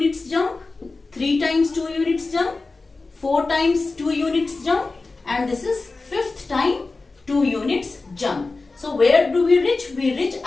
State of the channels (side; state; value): right; quieter; 3.6 dB